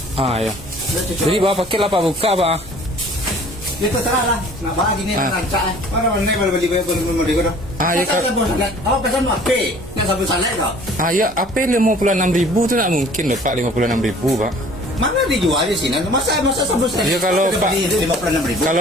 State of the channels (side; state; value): both; normal; correlation 0.51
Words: Jadi bawa paket lah pak buka pak. Ya terserah lah. Nak bagi ni rancak lah. Mana mana boleh beli beli kau. Ya kalau awak pesan apa? Nak sabun salad kau? Ya apa 56.000 tu tak mungkin lah pak 56.000 pak. Mana dijual di sini? Masa sabun salad? Ya kalau pak 56.000.